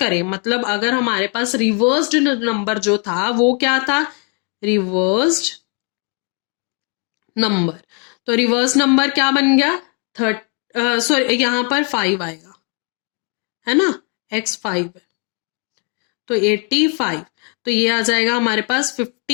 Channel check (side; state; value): right; quieter; 37.9 dB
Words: मतलब अगर हमारे पास रिवर्स्ड नंबर जो था वो क्या था, रिवर्स्ड नंबर, तो रिवर्स नंबर क्या बन गया, सॉरी यहाँ पर 5 आएगा, है ना, x 5 है तो 85। तो ये आ जाएगा हमारे पास